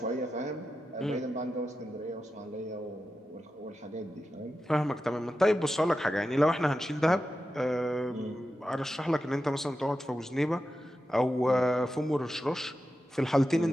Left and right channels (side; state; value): both; normal; correlation 0.91